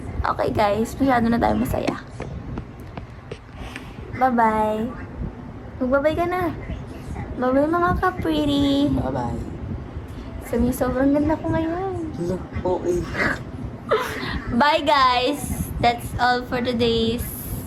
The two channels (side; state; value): both; identical; correlation 1.00